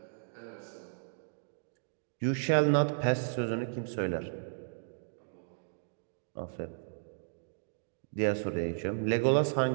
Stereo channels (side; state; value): left; silent; digital silence